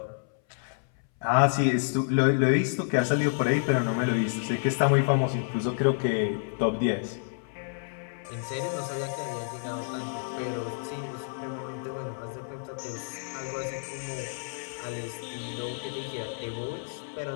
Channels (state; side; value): silent; right; 59 dB below the other